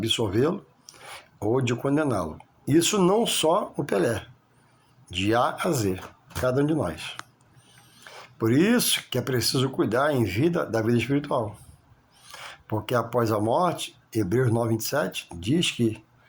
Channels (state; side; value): identical; both; correlation 1.00